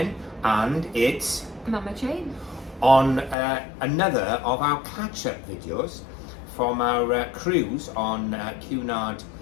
and it's Mama Jane. on another of our catch-up videos from our cruise on Cunard,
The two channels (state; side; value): drops out; right; at 3.4 s